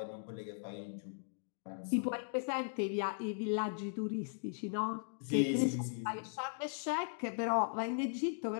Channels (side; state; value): right; silent; digital silence